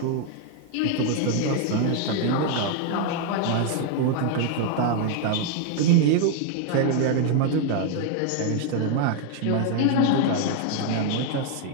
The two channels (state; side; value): different; both; correlation 0.00